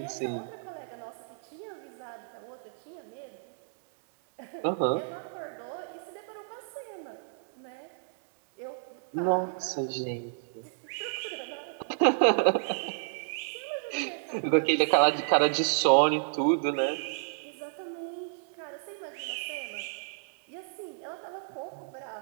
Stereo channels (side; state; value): left; silent; digital silence